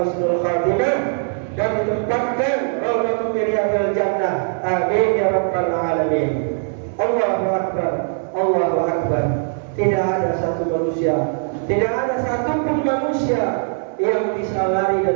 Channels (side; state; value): left; silent; digital silence